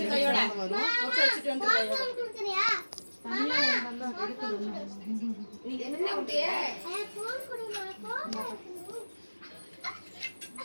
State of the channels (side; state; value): both; inverted; correlation -1.00